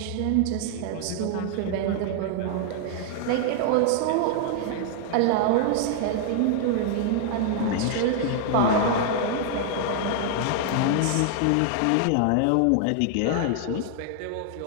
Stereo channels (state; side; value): different; both; correlation 0.00